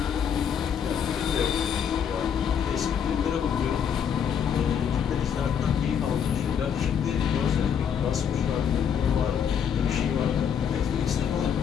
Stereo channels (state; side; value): quieter; right; 7.9 dB